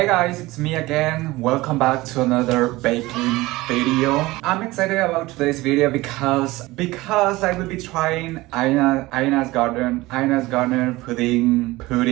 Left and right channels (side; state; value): left; quieter; 19.7 dB